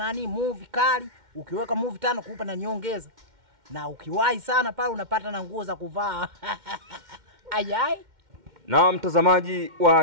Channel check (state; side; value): late; left; 2.1 ms